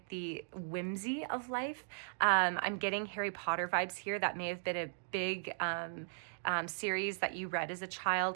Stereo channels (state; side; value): silent; left; digital silence